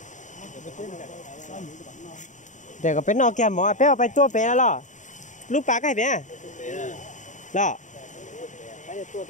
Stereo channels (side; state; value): right; late; 0.36 ms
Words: Để có bé nó kia mỏ bé phải tua bé lo. Lúc bà cái bé. Đó.